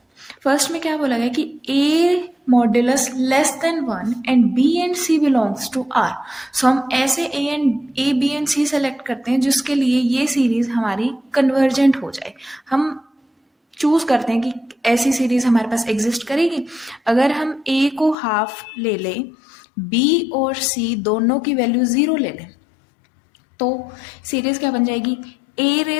फर्स्ट में क्या बोला गया कि a modulus less than 1 and b and c belongs to r। So हम ऐसे a b and c select करते हैं जिसके लिए ये सीरीज हमारी कन्वर्जेंट हो जाए। हम चूज करते हैं कि ऐसी सीरीज हमारे पास एग्जिस्ट करेगी। अगर हम a को हाफ ले लें, b और c दोनों की वैल्यू 0 ले लें, तो सीरीज क्या बन जाएगी? a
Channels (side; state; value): right; drops out; at 18.2 s